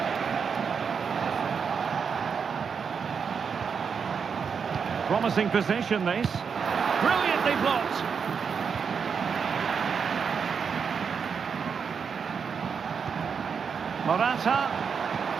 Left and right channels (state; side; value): quieter; left; 6.3 dB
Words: Promising position, this. Brilliantly blocked. Morata.